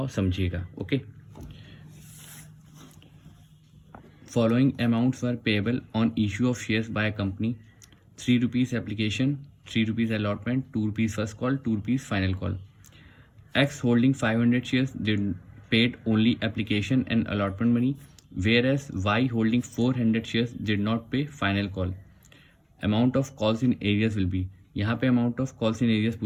समझिएगा। Okay. Following amounts were payable on issue of shares by a company: ₹3 application, ₹3 allotment, ₹2 first call, ₹2 final call. X holding 500 shares did paid only application and allotment money, whereas Y holding 400 shares did not pay final call. Amount of calls in areas will be, यहाँ पे amount of calls in areas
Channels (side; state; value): both; identical; correlation 1.00